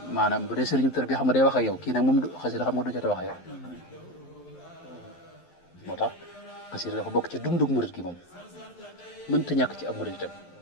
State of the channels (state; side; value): late; right; 11 ms